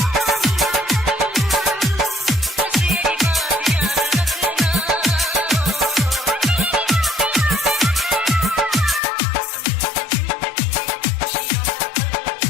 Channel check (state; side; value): drops out; right; at 9.0 s